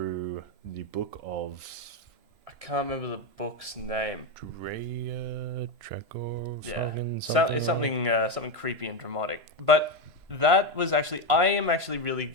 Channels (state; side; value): late; left; 3.0 ms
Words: the book of... I can't remember the book's name. Drea, Trekor, it's something creepy and dramatic. But that was actually... I am actually really